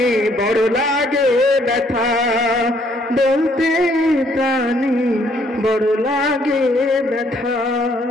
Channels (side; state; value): both; normal; correlation 0.66